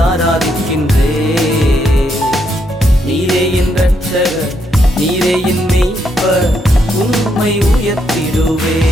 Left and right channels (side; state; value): both; normal; correlation 0.77